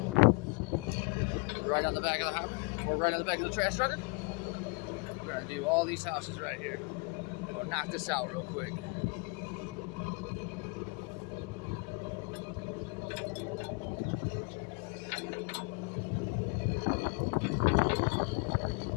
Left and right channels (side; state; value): right; quieter; 31.6 dB